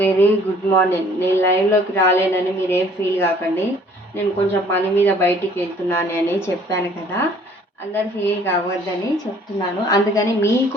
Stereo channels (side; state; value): both; normal; correlation 0.56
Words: good morning. నేను లైవ్లోకి రాలేనని మీరేం ఫీల్ కాకండి. నేను కొంచెం పని మీద బయటికి వెళ్తున్నాను అని చెప్పాను కదా, అందరు ఫీల్ కావద్దని చెప్తున్నాను. అందుకని